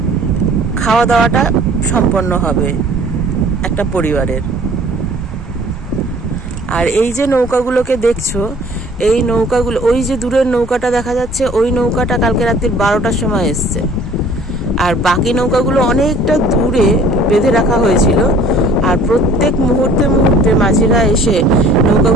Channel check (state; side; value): normal; both; correlation 0.52